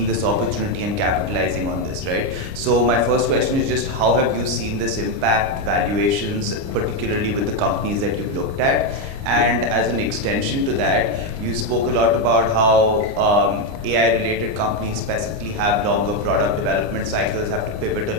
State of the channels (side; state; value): left; late; 29 ms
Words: this opportunity and capitalizing on this, right? So my first question is just how have you seen this impact valuations, particularly with the companies that you've looked at? And as an extension to that, you spoke a lot about how AI-related companies specifically have longer product development cycles, have to pivot a